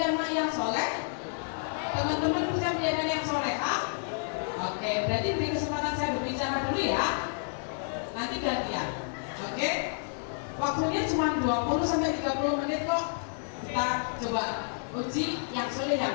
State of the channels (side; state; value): right; silent; 58 dB below the other